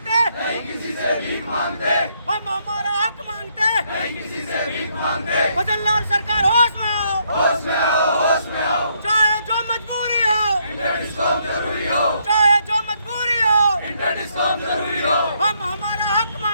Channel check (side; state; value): both; inverted; correlation -0.73